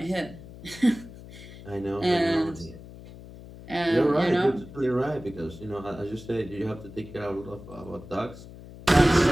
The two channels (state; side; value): noise; left; hum, 16 dB below the sound